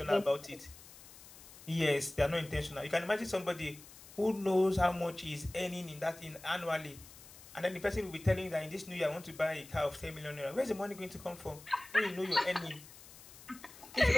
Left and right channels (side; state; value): left; noise; hiss, 18 dB below the sound